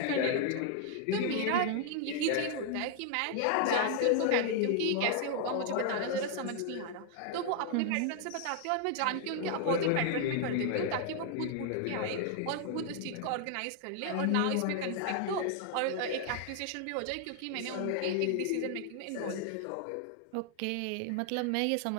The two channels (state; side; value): different; both; correlation 0.00